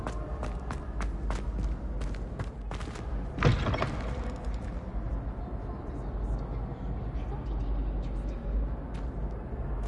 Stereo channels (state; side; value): identical; both; correlation 1.00